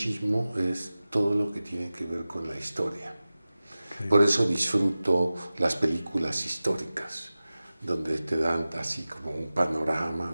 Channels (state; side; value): inverted; both; correlation -0.96